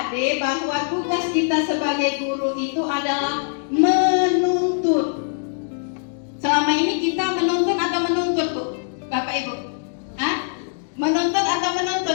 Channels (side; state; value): right; silent; digital silence